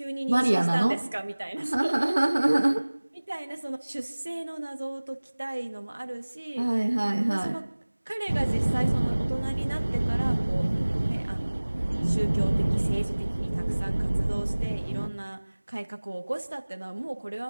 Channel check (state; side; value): inverted; both; correlation -1.00